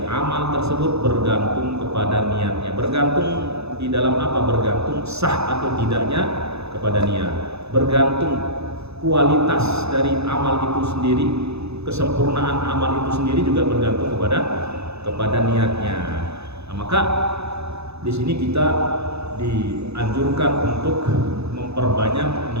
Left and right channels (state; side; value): late; left; 0.79 ms